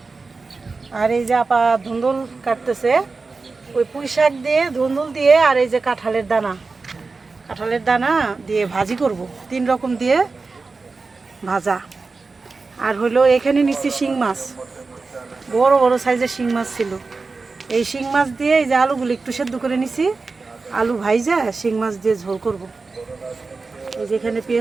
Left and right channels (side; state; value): left; quieter; 4.1 dB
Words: আর এই যে আপা ধুন্দুল কাটতেছে, ওই পুঁই শাক দিয়ে ধুন্দুল দিয়ে আর এই যে কাঁঠালের দানা দিয়ে ভাজি করব, 3 রকম দিয়ে ভাজা। আর হলো এখানে নিচ্ছি শিং মাছ, বড় বড় সাইজের শিং মাছ ছিল। এই শিং মাছ দিয়ে এই যে আলুগুলো একটু সেদ্ধ করে নিছি, আলু ভাইজা শিং মাছ দিয়ে ঝোল করব। এই যে এখানে